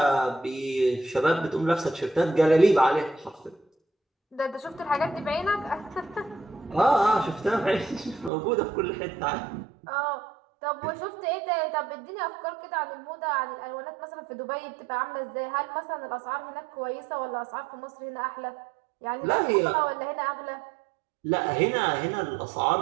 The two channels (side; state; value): left; drops out; at 8.3 s